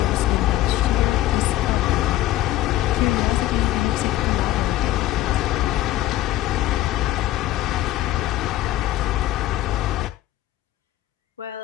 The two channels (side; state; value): right; quieter; 14.9 dB